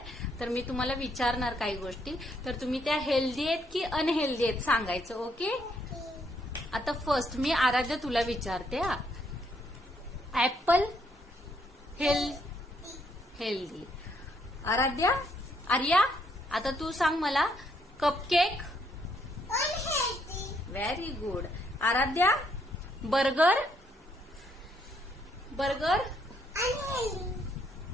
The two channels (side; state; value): both; normal; correlation 0.72